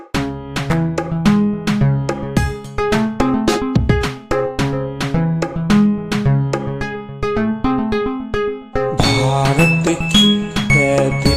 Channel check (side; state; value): both; identical; correlation 1.00